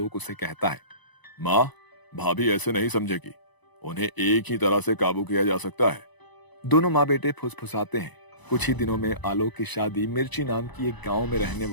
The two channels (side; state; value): right; late; 1.0 ms